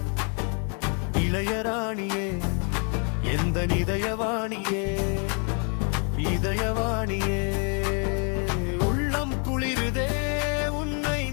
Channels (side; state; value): right; quieter; 38.6 dB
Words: இளையராணியே எந்த இதயவாணியே இதயவாணியே உள்ளம் குளிருதே உன்னை